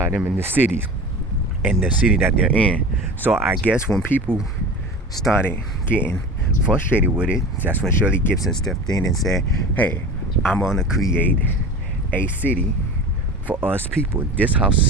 them in the cities and the city that they're in. So I guess when people started getting frustrated with it, that's when Shirley Gibson stepped in and said, hey, I'm gonna create a city for us people. This house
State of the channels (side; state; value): both; normal; correlation 0.35